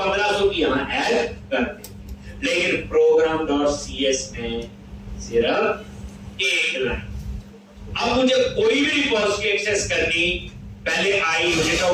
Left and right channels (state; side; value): identical; both; correlation 1.00